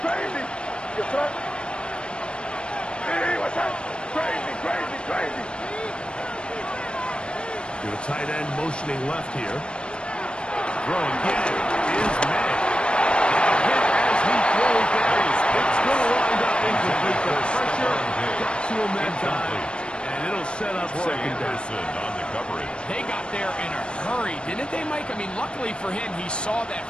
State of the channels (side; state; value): right; late; 0.055 ms